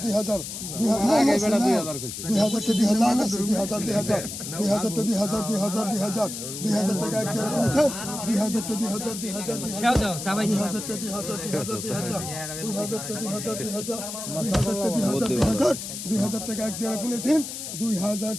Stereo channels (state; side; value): noise; left; hiss, 7 dB below the sound